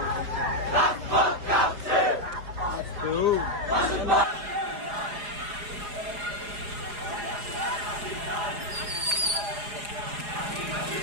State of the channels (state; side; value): late; left; 4.8 ms